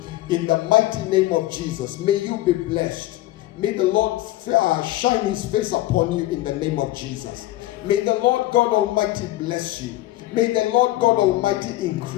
In the mighty name of Jesus, may you be blessed. May the Lord shine his face upon you in the name of Jesus. May the Lord God Almighty bless you. May the Lord God Almighty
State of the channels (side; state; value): right; quieter; 16.3 dB